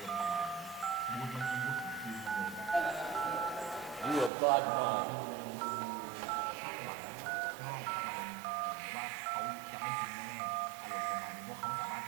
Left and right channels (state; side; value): drops out; left; at 4.3 s